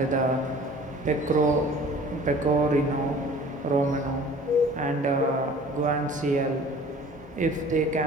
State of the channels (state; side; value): normal; both; correlation 0.47